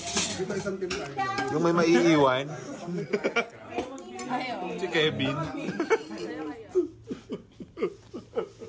Yung may maiiwan. Si Kevin.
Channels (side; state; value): both; identical; correlation 1.00